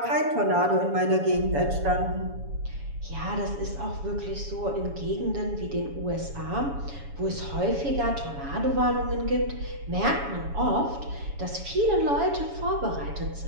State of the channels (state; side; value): late; left; 7.1 ms